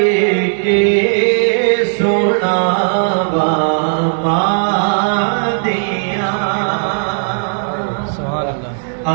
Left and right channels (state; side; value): silent; left; digital silence